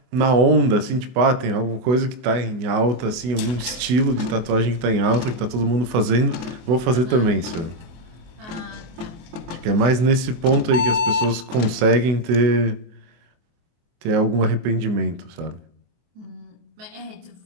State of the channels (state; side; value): late; left; 24 ms